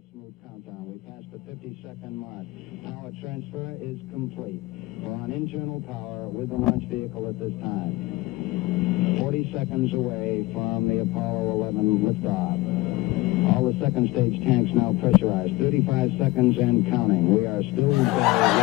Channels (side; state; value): right; quieter; 19.4 dB